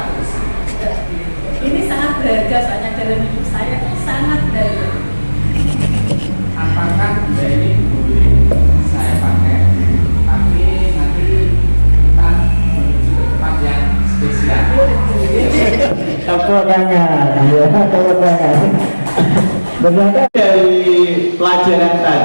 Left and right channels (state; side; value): inverted; both; correlation -1.00